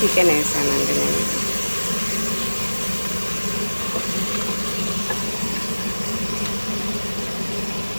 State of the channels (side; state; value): both; inverted; correlation -1.00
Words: చికెన్ వేసానండి నేను.